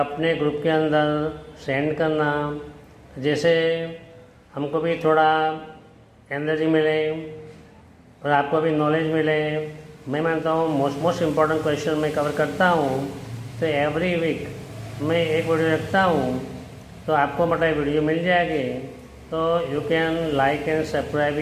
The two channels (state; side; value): identical; both; correlation 1.00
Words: ग्रुप के अंदर सेंड करना, जैसे हमको भी थोड़ा एनर्जी मिले और आपको भी नॉलेज मिले. मैं मानता हूँ मोस्ट इम्पॉर्टेंट क्वेश्चन मैं कवर करता हूँ, तो एवरी वीक मैं एक वीडियो रखता हूँ, तो आपको मतलब वीडियो मिल जाएगी. तो you can like and subscribe